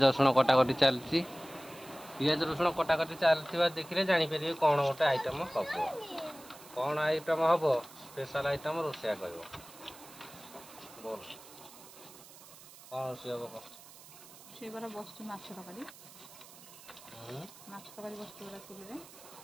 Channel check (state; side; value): noise; right; hiss, 19 dB below the sound